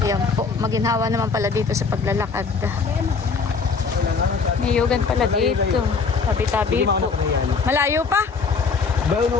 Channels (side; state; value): right; quieter; 5.0 dB